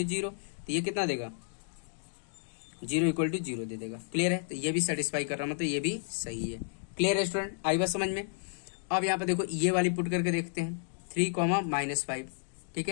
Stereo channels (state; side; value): silent; right; digital silence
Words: 0। तो ये कितना देगा 0 इक्वल टू 0 दे देगा। क्लियर है, तो ये भी सेटिस्फाई कर रहा, मतलब ये भी सही है। क्लियर है स्टूडेंट, आई बात समझ में। अब यहाँ पे देखो ये वाली पुट करके देखते हैं 3, -5। ठीक